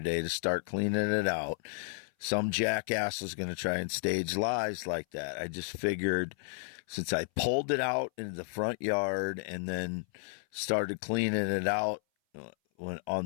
day to start cleaning it out, some jackass was going to try and stage lies like that. I just figured since I pulled it out into the front yard and then started cleaning it out on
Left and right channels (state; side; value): silent; right; 56 dB below the other